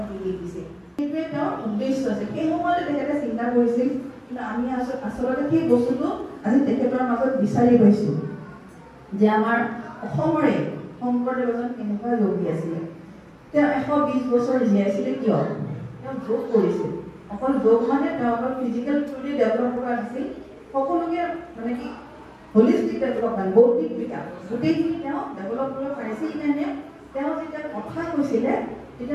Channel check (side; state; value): both; identical; correlation 1.00